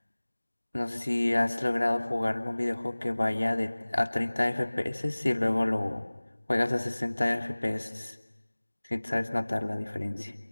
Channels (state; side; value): inverted; both; correlation -1.00